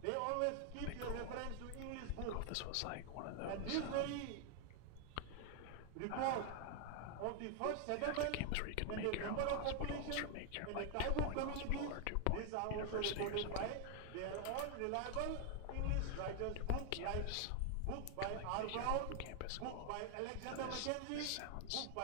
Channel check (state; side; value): different; both; correlation 0.00